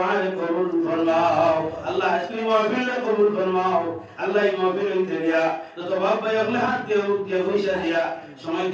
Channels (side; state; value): both; identical; correlation 1.00